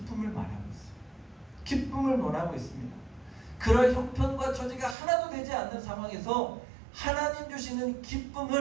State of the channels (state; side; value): drops out; left; at 5.0 s